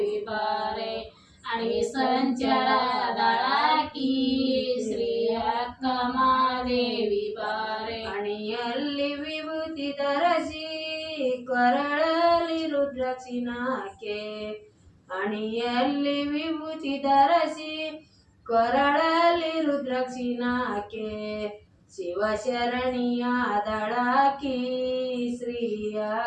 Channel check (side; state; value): both; identical; correlation 1.00